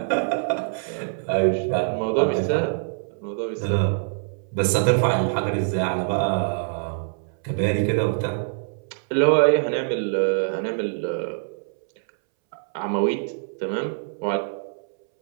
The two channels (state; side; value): silent; left; 62 dB below the other